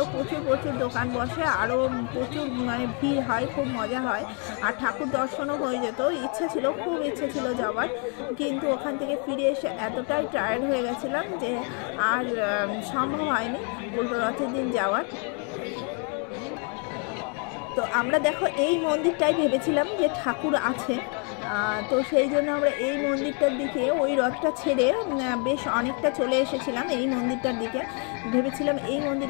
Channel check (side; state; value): right; quieter; 37.9 dB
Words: প্রচুর দোকান বসে, আরও প্রচুর মানে ভিড় হয়, খুব মজা হয়, আর ঠাকুর দর্শনও হয়ে যেত। খুব ইচ্ছে ছিল যাওয়ার, কিন্তু ওখান থেকে ফিরে এসে এতটাই টায়ার্ড হয়ে গেছিলাম যে আর সম্ভব হয়নি উল্টো রথের দিন যাওয়ার। তো আমরা দেখো এই মন্দিরটাই ভেবেছিলাম যে ঠাকুর আছে, তো সেই জন্য আমরা এই মন্দিরটার দিকে ওই রথটা ছেড়ে বেশ অনেকটা চলে এসেছিলাম এই মন্দিরটার দিকে। ভেবেছিলাম এই